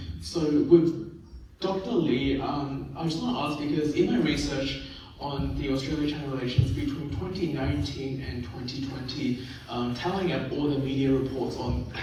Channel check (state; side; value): identical; both; correlation 1.00